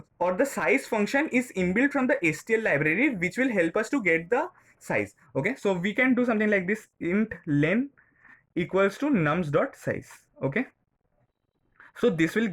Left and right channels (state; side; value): identical; both; correlation 1.00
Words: or the size function is inbuilt from the STL library, which will help us to get the size. Okay, so we can do something like this: int len equals to nums.size. Okay, so this will